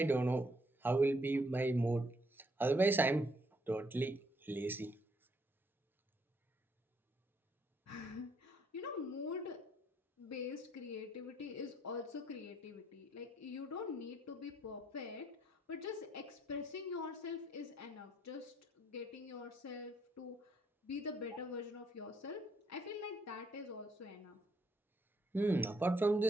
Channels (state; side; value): normal; both; correlation 0.71